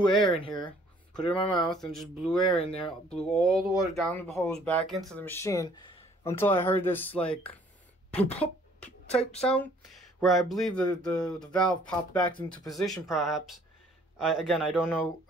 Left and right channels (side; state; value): both; normal; correlation 0.59